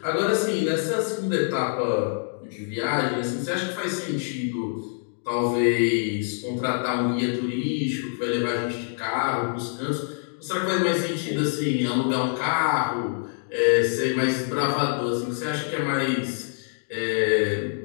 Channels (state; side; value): silent; right; digital silence